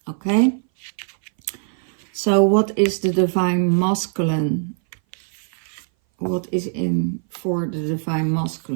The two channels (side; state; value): left; silent; 60 dB below the other